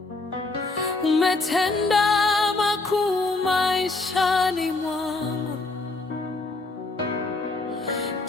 Umetenda makuu maishani mwangu,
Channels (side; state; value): right; quieter; 3.3 dB